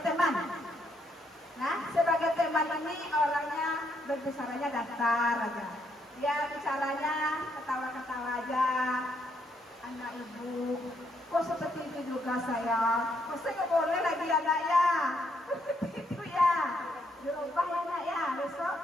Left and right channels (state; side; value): normal; both; correlation 0.74